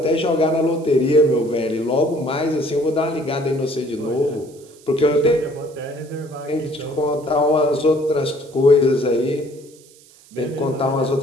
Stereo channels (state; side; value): noise; right; hiss, 26 dB below the sound